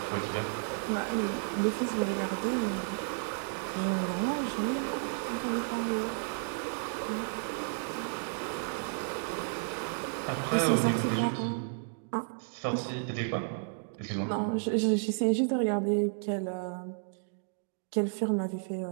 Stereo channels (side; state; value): left; silent; digital silence